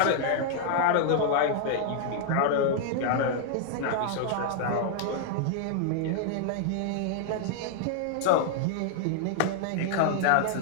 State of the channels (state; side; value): different; both; correlation 0.00